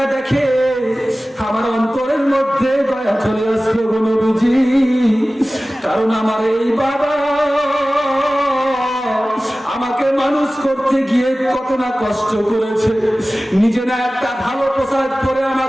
দেখে আমার অন্তরের মধ্যে দয়া চলে আসলো গো নবীজি, কারণ আমার এই বাবা আমাকে মানুষ করতে গিয়ে কত না কষ্ট করেছে। নিজে না একটা ভালো পোশাক পরে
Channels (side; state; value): both; normal; correlation 0.97